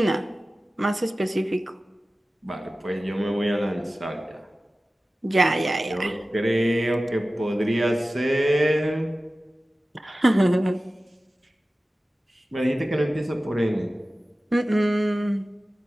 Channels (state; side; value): normal; both; correlation 0.96